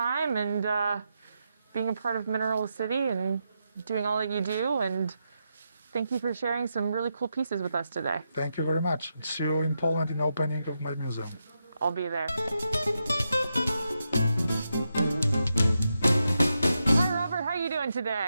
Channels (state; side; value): inverted; both; correlation -0.86